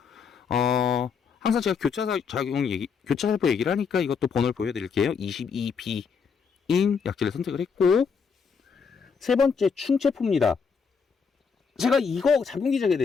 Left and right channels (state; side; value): quieter; right; 5.9 dB